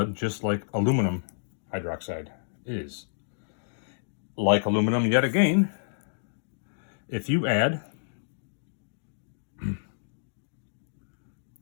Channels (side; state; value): right; silent; digital silence